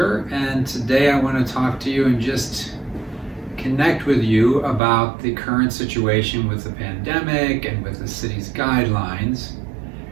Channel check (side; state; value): left; drops out; at 4.8 s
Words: and today I want to talk to you and just connect with you about the current situation with the pandemic and with the city's guidelines.